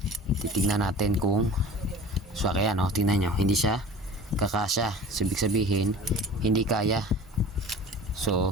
Titignan natin kung so kaya, no, tingnan nyo, hindi siya kakasya. So, ibig sabihin hindi kaya.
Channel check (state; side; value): normal; both; correlation 0.41